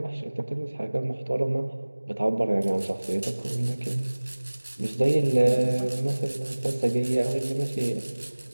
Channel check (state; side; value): inverted; both; correlation -1.00